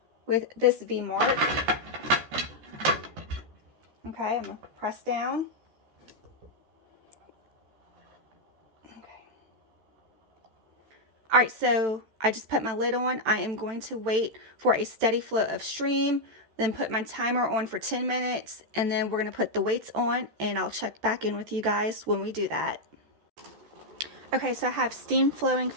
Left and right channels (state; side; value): late; left; 14 ms